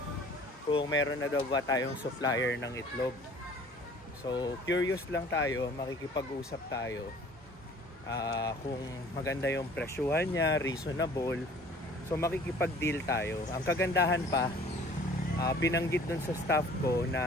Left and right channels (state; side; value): normal; both; correlation 0.51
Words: kung meron na daw ba tayong supplier ng itlog. So, curious lang tayo, makikipag-usap tayo. Kung maganda yung presyuhan niya, reasonable, so makikipag-deal tayo. Ang kagandahan pa, binanggit dun sa staff ko